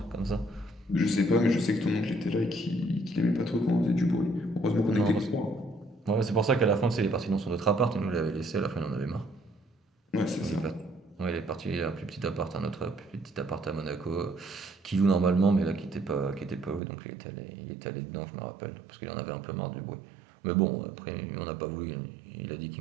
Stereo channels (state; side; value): drops out; left; at 16.8 s